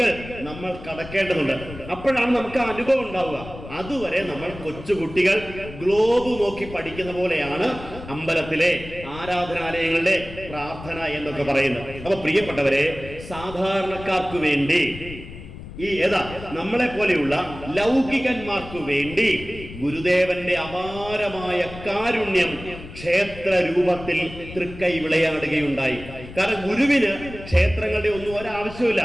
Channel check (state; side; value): noise; left; rumble, 14 dB below the sound